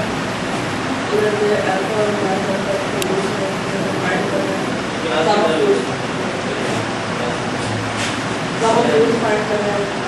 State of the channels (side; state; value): both; identical; correlation 1.00